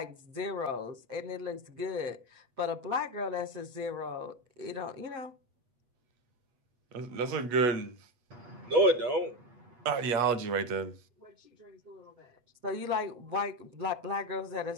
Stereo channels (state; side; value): late; left; 8.3 ms